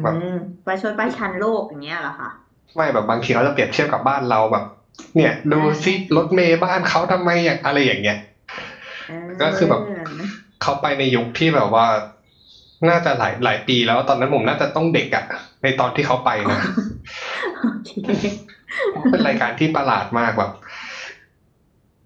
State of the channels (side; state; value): both; identical; correlation 1.00